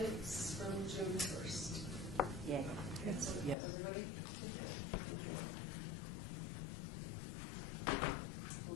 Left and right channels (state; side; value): drops out; right; at 3.6 s